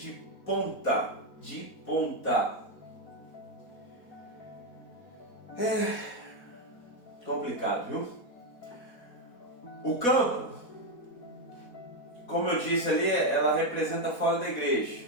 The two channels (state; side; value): late; right; 4.2 ms